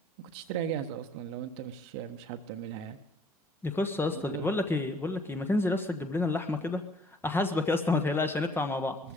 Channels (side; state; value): both; normal; correlation 0.59